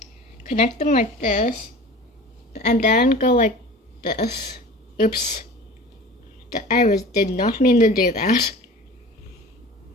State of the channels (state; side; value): normal; both; correlation 0.39